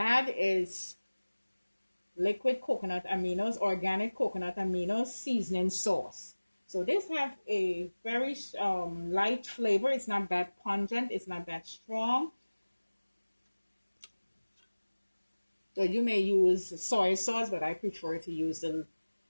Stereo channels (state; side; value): inverted; both; correlation -1.00